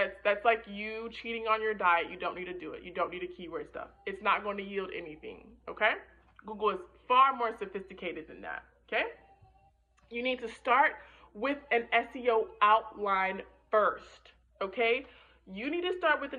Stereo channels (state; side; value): identical; both; correlation 1.00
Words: like you cheating on your diet. You don't need to do it. You don't need to keyword stuff. It's not going to yield anything, okay? Google is far more sophisticated than that, okay? You need to start with an SEO outline first, okay? You need to start with